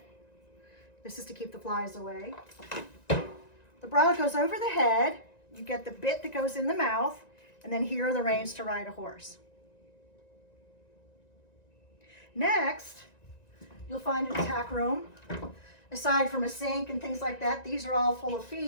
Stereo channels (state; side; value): late; right; 1.9 ms